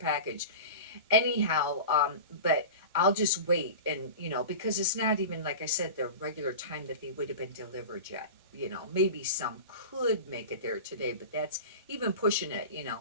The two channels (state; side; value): inverted; both; correlation -0.32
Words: Anyhow, but I'll just wait, and because it's not even, like I said, the regular time that they would have been delivered yet. Maybe some could make it there today, but that's even pushing it.